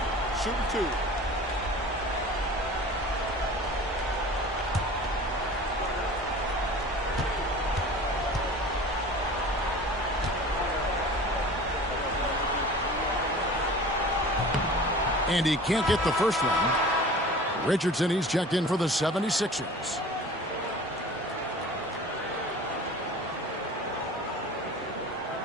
Shooting 2. And he can't get the first one. Richardson, he's checked in for the 76ers.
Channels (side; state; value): both; normal; correlation 0.41